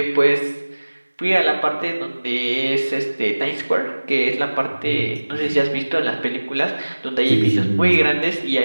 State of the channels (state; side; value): inverted; both; correlation -1.00